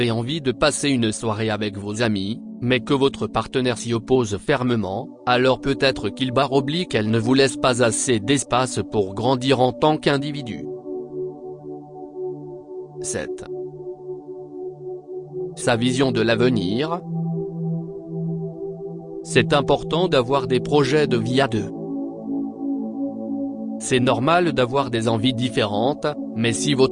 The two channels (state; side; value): identical; both; correlation 1.00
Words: envie de passer une soirée avec vos amis, mais que votre partenaire s'y oppose fermement, alors peut-être qu'elle ne vous laisse pas assez d'espace pour grandir en tant qu'individu. 7. Sa vision de l'avenir. C'est important d'avoir des projets de vie à deux. C'est normal d'avoir des envies différentes, mais si